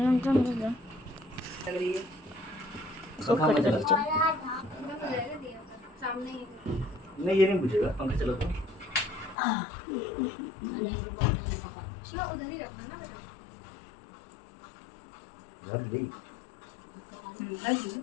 नहीं ये नहीं पूछेगा, पंखा चला तो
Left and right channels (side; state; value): right; drops out; at 9.3 s